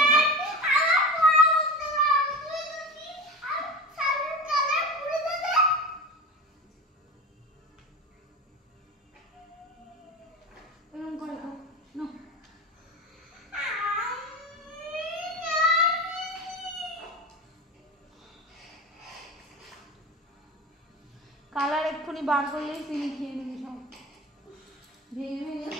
কালার এক্ষুনি বার করলেই চিনি খেয়ে নেবে সব ভেঙে ভেঙে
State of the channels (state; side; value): normal; both; correlation 0.30